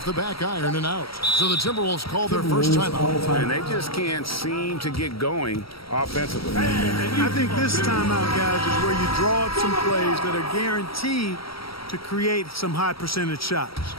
the back iron and out. So the Timberwolves call their first timeout. And they just can't seem to get going offensively. I think this timeout, guys, is where you draw up some plays that are guaranteed to create some high percentage shots.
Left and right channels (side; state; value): right; late; 0.75 ms